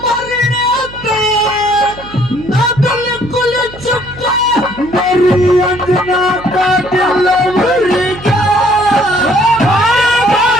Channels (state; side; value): noise; right; hum, 18 dB below the sound